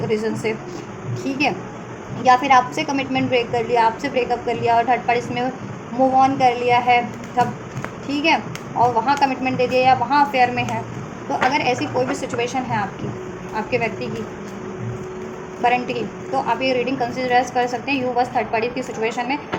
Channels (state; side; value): identical; both; correlation 1.00